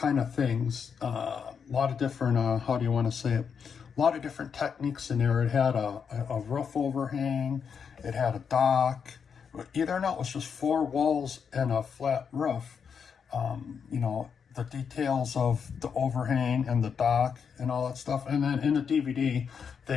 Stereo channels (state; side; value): quieter; right; 6.6 dB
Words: of things. A lot of different, how do you want to say it? A lot of different techniques in there. It had a roof overhang. It had a dock. Either or not, it was just 4 walls and a flat roof. You know, the details of the overhang and the dock and all that stuff. And then in the DVD,